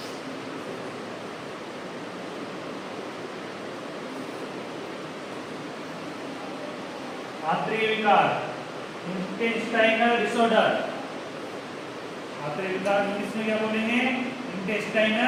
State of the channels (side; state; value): both; identical; correlation 1.00